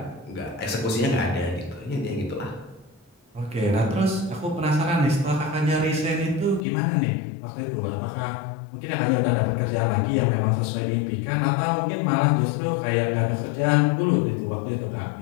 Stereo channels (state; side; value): drops out; right; at 6.7 s